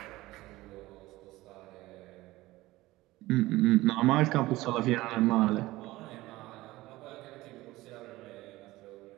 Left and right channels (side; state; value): left; quieter; 18.4 dB